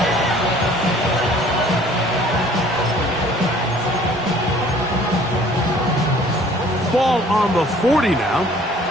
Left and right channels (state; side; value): normal; both; correlation 0.54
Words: Ball on the 40 now.